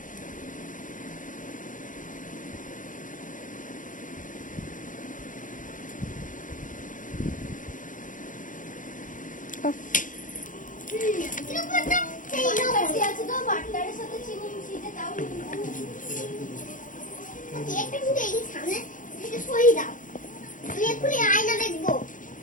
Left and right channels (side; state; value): right; late; 0.38 ms